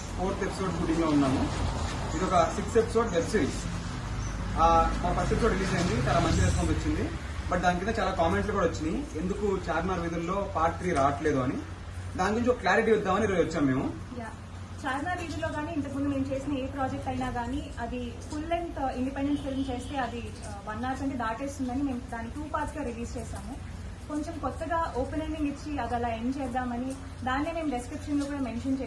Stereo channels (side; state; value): both; identical; correlation 1.00